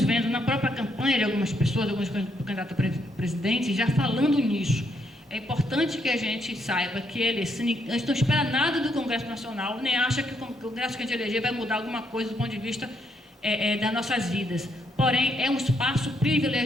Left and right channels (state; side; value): normal; both; correlation 0.75